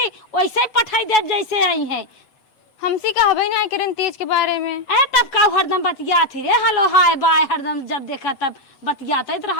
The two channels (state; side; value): late; right; 7.9 ms